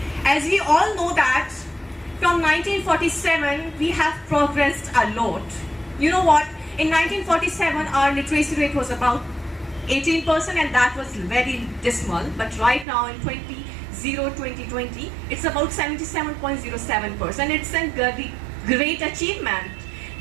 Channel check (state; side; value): drops out; left; at 12.9 s